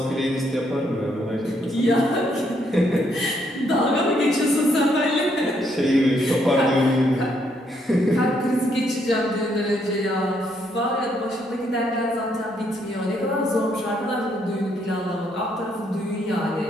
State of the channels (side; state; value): both; normal; correlation 0.73